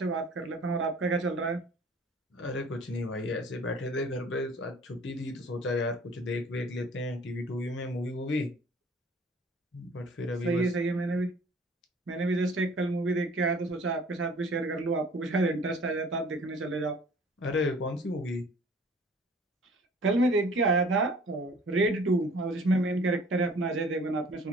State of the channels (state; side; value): normal; both; correlation 0.51